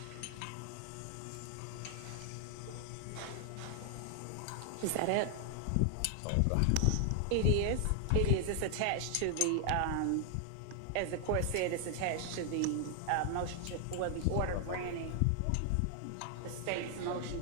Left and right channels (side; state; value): both; different; correlation 0.00